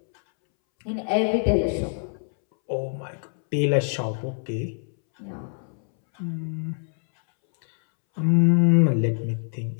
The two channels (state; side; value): silent; right; 62 dB below the other